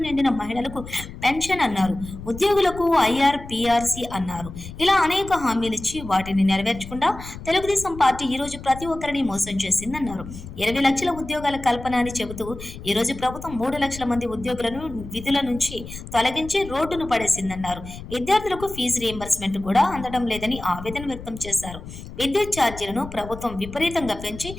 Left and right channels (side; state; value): left; noise; rumble, 13 dB below the sound